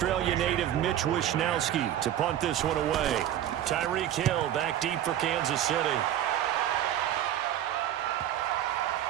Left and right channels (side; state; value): left; quieter; 11.5 dB